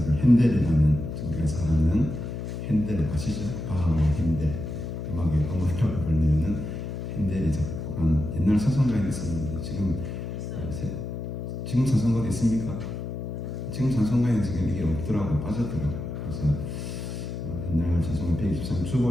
핸델이라는 우리가 잘 아는 핸델 아시죠? 바하와 핸델 음악의 어머니라고 불리는 핸델이 작곡한 옛날 찬송가에 있었는데 지금 찬송가도 있습니까? 지금 찬송가에 지금 이게 없더라고 빠졌더라고. 그래서 옛날 찬송가 123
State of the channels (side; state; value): left; noise; hum, 5 dB below the sound